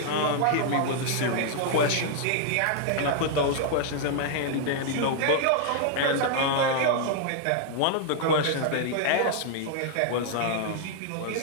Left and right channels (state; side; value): different; both; correlation 0.00